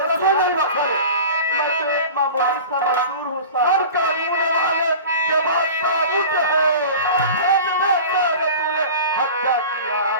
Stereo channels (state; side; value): inverted; both; correlation -0.36